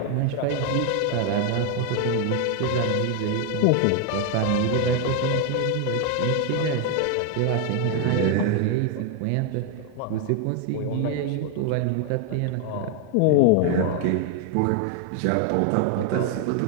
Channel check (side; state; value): both; different; correlation 0.00